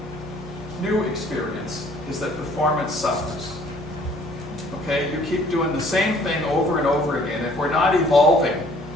new experience is that performance suffers. Okay, you keep doing the same thing over and over again. If we're not evolving,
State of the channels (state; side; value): normal; both; correlation 0.58